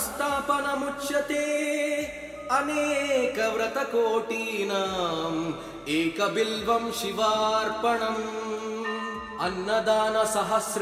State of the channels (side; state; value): both; identical; correlation 1.00